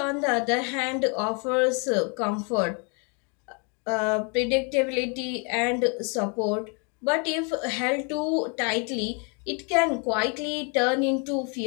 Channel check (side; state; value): right; quieter; 35.9 dB